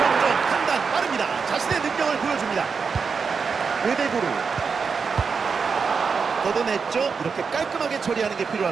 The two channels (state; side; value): quieter; left; 5.5 dB